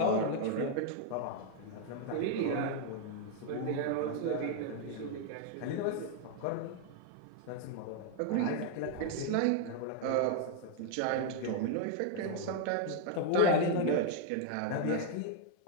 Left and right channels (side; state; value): both; different; correlation 0.00